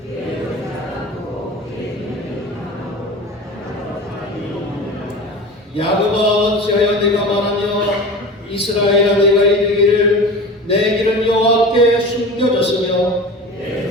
야곱아 어찌하여 내가 말하며 이스라엘아 내가 이르기를 내 길은 여호와께 숨겨졌으며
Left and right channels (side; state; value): both; normal; correlation 0.34